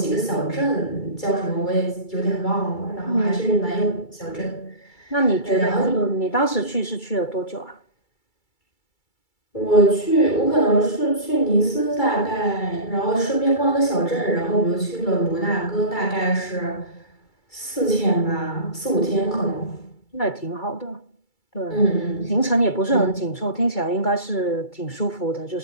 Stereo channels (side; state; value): right; late; 2.3 ms